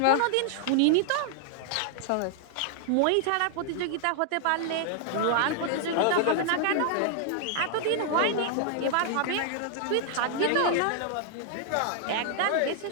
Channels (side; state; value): both; different; correlation -0.01